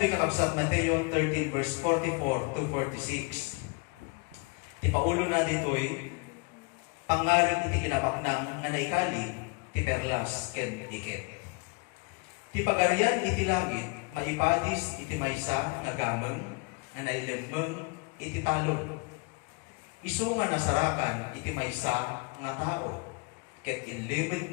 yung kakabsat, Mateo 13 verse 44 to 46, ti paulo na dito'y, pangaring iti kinapaknang nga naikali, ti perlas ken iket. Ti pagarian iti langit, maipadis iti maysa nga gameng, nga nailemmeng iti talon. Isu nga nasarakan iti maysa nga tao, ket inlibid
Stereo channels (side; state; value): right; quieter; 29.9 dB